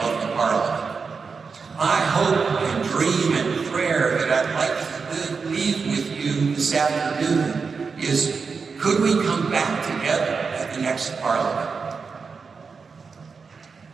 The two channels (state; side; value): quieter; left; 5.1 dB